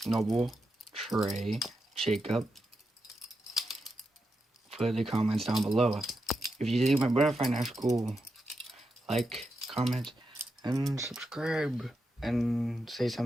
Noble, Trey, Jacob. Put the comments down below. If you think my butterfly knife's cool, like, comment, and subscribe, and say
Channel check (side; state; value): both; normal; correlation 0.86